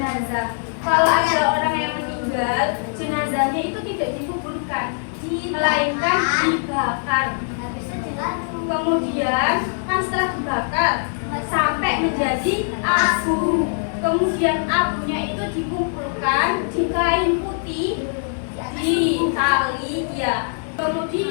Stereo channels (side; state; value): right; silent; digital silence